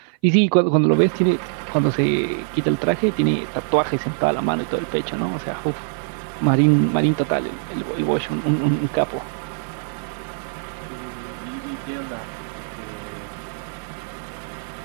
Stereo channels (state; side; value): silent; left; 55 dB below the other